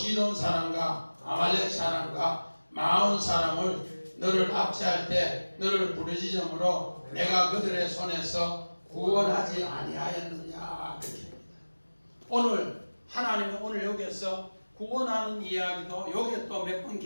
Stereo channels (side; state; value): both; inverted; correlation -1.00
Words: 사람과 아말렉 사람과 마온 사람을 너를 압제할 때 너를 부르짖음으로 내가 그들의 손에서 구원하지 아니하였느냐? 오늘 하나님은 오늘 여기에서 구원하는 이야기도 여기에 또 몇 번